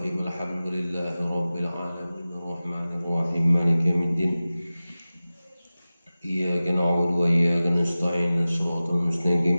Alhamdulillahi rabbil alamin arrahmanir rahim maliki yaumiddin. Iyyaka na'budu wa iyyaka nasta'in shiratal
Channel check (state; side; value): inverted; both; correlation -0.96